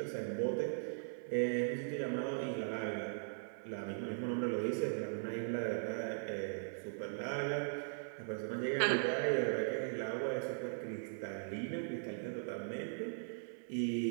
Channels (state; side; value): silent; left; 51 dB below the other